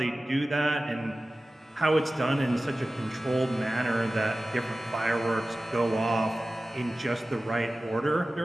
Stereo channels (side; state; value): both; normal; correlation 0.96